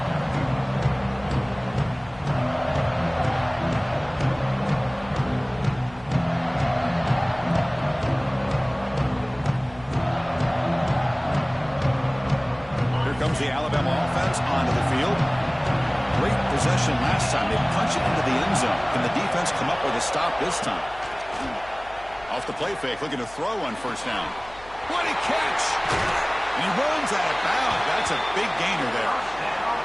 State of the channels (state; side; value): noise; left; hum, 21 dB below the sound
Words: Comes the Alabama offense onto the field. Great possession last time. They punch it into the end zone. Can the defense come up with a stop this time? Off the play fake, looking to throw on first down. What a catch! And he runs out of bounds. That's a big gainer there.